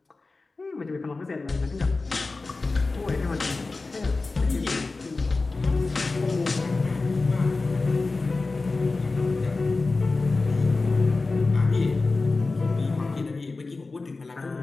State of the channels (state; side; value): quieter; right; 3.6 dB